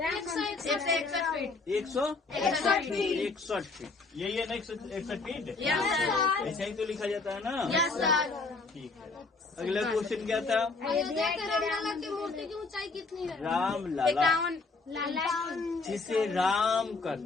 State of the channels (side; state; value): right; quieter; 3.9 dB